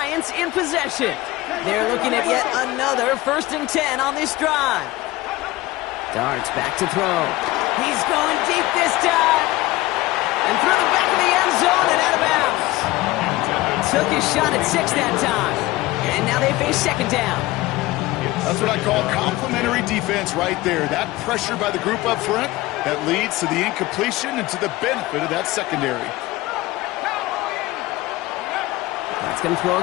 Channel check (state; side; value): quieter; right; 18.6 dB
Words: in possession. They're looking at yet another 1st and 10 on this drive. Darts back to throw. He's going deep this time. And through the back of the end zone and out of bounds. Took his shot at 6 that time. And now they face 2nd down. That's what I call complimentary defense right there. That pressure by the group up front, that leads to the incompletion and to the benefit of that secondary. That's going to throw